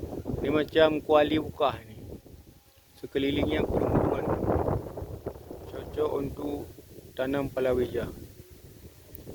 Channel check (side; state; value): both; identical; correlation 1.00